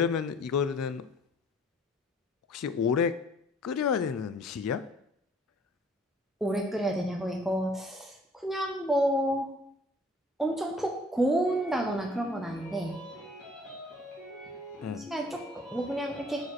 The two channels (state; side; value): normal; both; correlation 0.56